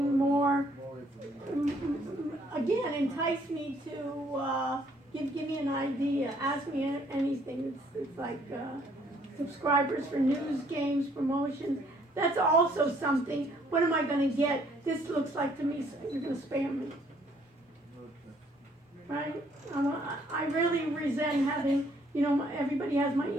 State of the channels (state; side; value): normal; both; correlation 0.64